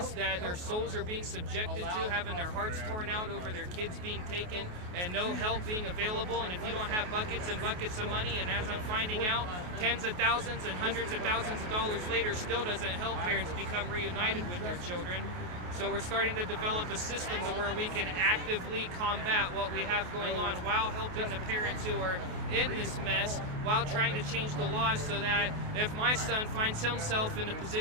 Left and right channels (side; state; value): left; late; 28 ms